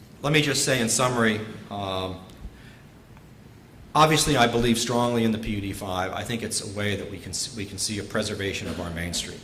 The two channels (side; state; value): both; identical; correlation 1.00